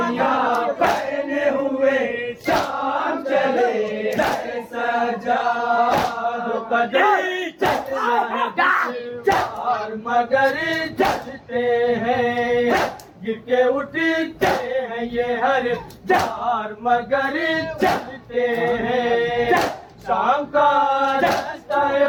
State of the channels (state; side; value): identical; both; correlation 1.00